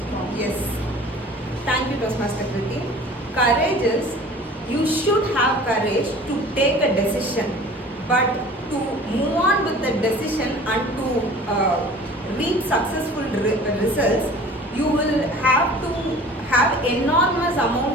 strong. Yes. Thank you, Toastmaster Krithi. Courage is, you should have courage to take a decision, but to move on with the decision and to reach successful results, you will have to have enormous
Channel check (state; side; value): normal; both; correlation 0.45